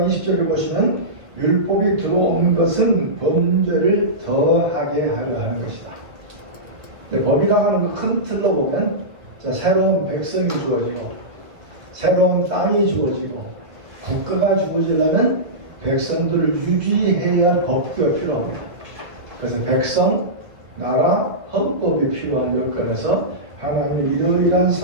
20절을 보시면 율법이 들어온 것은 범죄를 더하게 하려 하는 것이다. 법이라고 하는 큰 틀로 보면 새로운 백성이 주어지고 새로운 땅이 주어지고 국가가 주어지려면 백성들을 유지해야 할 법규가 필요합니다. 그래서 백성, 나라, 헌법이 필요한 여건에서 하나님이 이러이러한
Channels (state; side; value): late; left; 2.2 ms